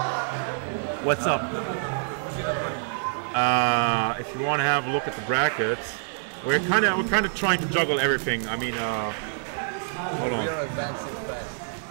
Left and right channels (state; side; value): silent; left; digital silence